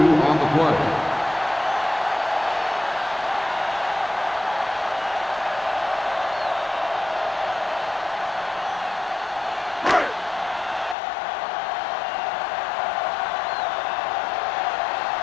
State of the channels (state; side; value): drops out; right; at 11.0 s